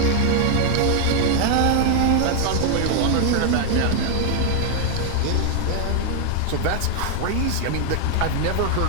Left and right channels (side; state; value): both; different; correlation 0.00